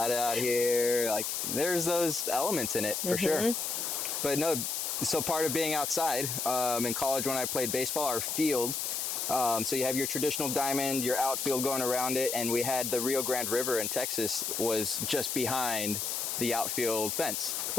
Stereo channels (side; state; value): left; noise; hiss, 1 dB below the sound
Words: out here. Like, there's those elements in it for sure. But no, so part of being outside, in college when I played baseball, our field, so you have your traditional diamond, your outfield going around it, and we had the Rio Grande River in Texas was just behind the outfield fence.